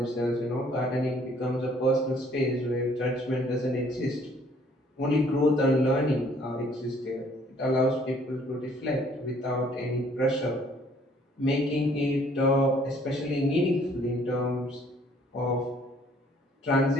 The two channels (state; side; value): normal; both; correlation 0.60